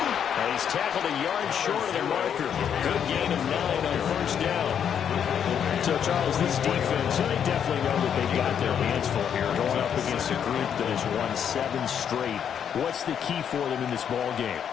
And he's tackled a yard short of the marker. Good gain of 9 on 1st down. So, Charles, this defense, they definitely know that they've got their hands full here, going up against a group that has won 7 straight. What's the key for them in this ball game?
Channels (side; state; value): right; quieter; 8.4 dB